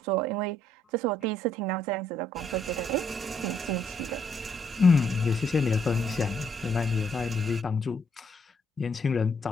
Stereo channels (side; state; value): both; normal; correlation 0.71